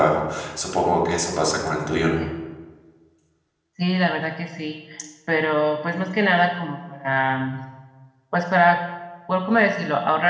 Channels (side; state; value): both; identical; correlation 1.00